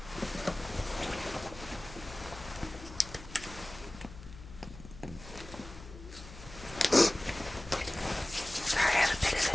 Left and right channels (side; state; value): left; noise; hum, 15 dB below the sound